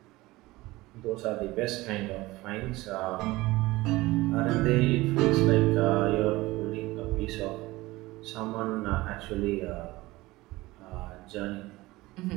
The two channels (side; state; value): left; quieter; 19.7 dB